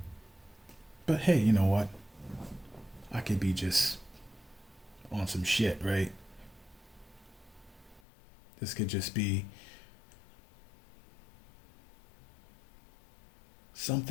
But hey, you know what? I could be just on some shit, right? This could just be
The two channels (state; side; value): drops out; right; at 8.0 s